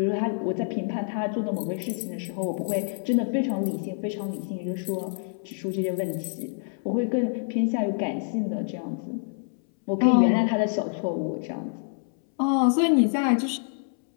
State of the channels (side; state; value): right; silent; 60 dB below the other